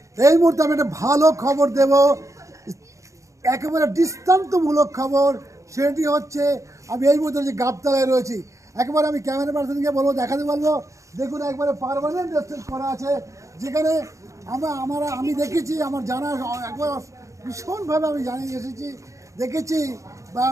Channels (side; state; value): left; late; 0.15 ms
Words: এই মুহূর্তে আমি একটা ভালো খবর দেব, একেবারে দৃষ্টান্তমূলক খবর। সেটি হচ্ছে আমি এই মুহূর্তে যে গাবতলায় রয়েছি, একেবারে আমি ক্যামেরা পার্সনকে বলবো, দেখাতে বলবো, দেখুন একবারে পার্মানেন্ট রেস্টুরেন্ট করা আছে, যেখানে আমি দেখেছি, আমার জানা একবার ভীষণভাবে আমি জানিয়ে এসেছি, দেখেছি বা